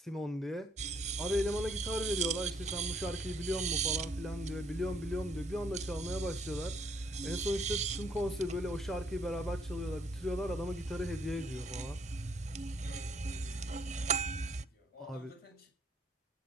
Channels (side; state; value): both; normal; correlation 0.68